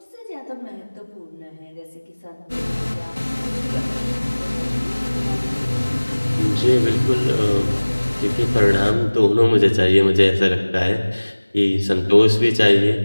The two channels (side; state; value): both; inverted; correlation -1.00